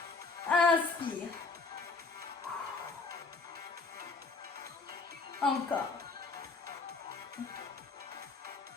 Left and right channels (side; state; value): right; quieter; 4.0 dB